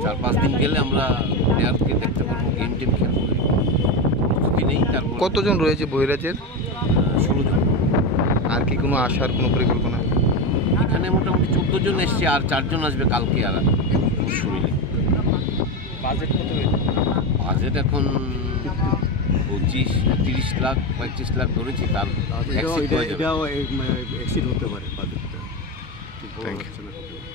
4-5 দিন গেলে আমরা প্লেয়ারকে দেখতে পারবো গেম টিম খেলবো নেই তারপর কতজন রয়েছে বহিরাজ্যের 16 জন আর কি কোনো আসার কোনো পরিকল্পনা এখানে মোটামুটি 14 জন এসছে আর 4 জন আসবে কালকে আর শুনিলে বাজেট কত বাজেট এখন 25-30 লাখ 35 লাখ ধরেছি তার এক্সিড হতে পারে বাজেটটা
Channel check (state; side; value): normal; both; correlation 0.15